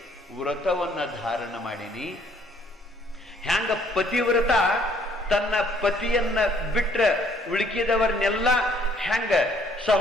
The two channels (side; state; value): both; normal; correlation 0.63